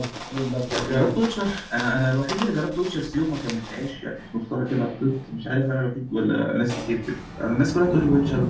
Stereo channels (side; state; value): both; identical; correlation 1.00